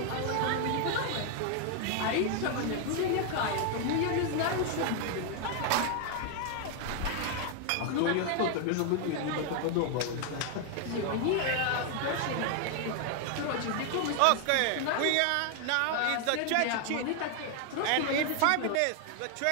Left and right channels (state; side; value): different; both; correlation 0.00